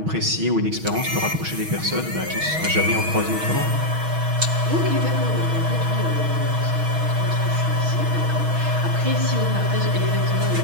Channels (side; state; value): left; late; 6.3 ms